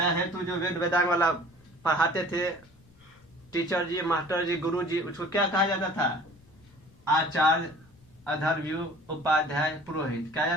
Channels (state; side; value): noise; left; rumble, 28 dB below the sound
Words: जो वेद वेदांग वाला पढ़ाते थे, टीचर जी, मास्टर जी, गुरु जी, उसको क्या कहा जाता था? आचार्य, अधर्व्यू, उपाध्याय, पुरोहित कहा